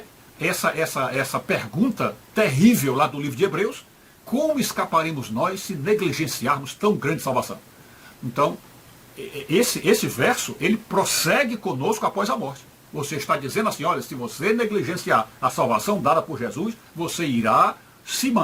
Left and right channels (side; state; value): both; identical; correlation 1.00